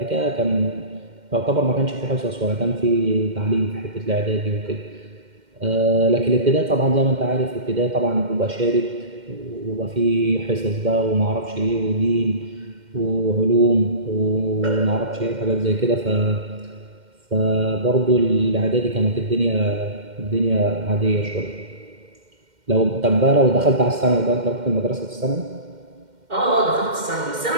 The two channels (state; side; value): late; left; 2.1 ms